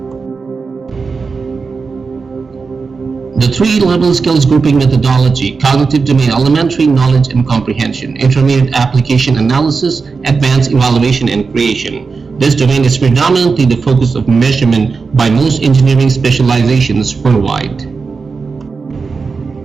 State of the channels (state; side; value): quieter; left; 4.7 dB